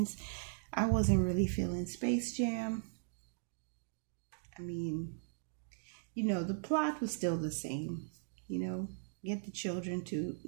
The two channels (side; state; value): left; silent; digital silence